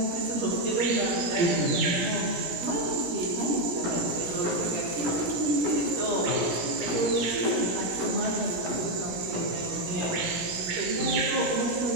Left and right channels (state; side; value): late; left; 17 ms